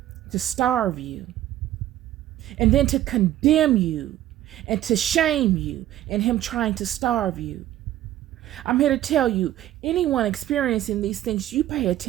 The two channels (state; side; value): quieter; left; 13.2 dB